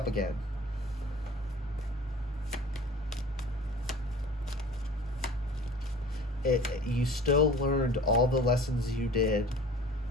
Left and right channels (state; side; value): normal; both; correlation 0.43